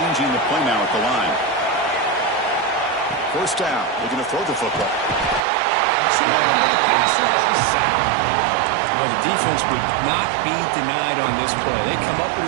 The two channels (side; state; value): left; drops out; at 5.4 s